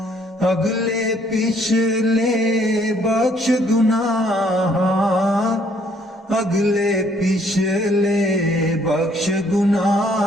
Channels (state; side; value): normal; both; correlation 0.64